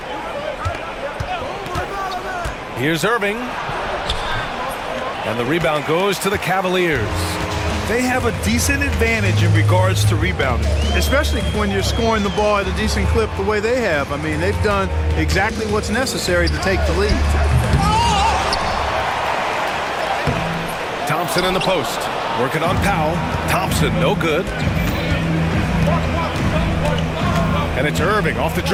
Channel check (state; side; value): identical; both; correlation 1.00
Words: Here's Irving. And the rebound goes to the Cavaliers. They have a decent advantage in regards to rebounding. Especially when you're scoring the ball at a decent clip the way they have. I mean, they've done exactly what's necessary to take the lead. Thompson in the post. Working on Powell. Thompson, no good. And it's Irving off the